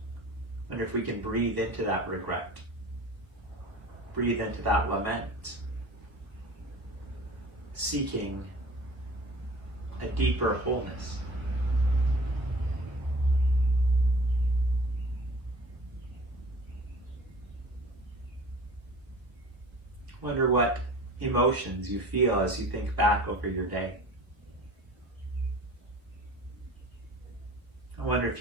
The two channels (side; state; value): left; late; 1.0 ms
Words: Wonder if we can breathe into that regret, breathe into that lament, seeking a deeper wholeness. Wonder what emotions you feel as you think back over your day. I wonder if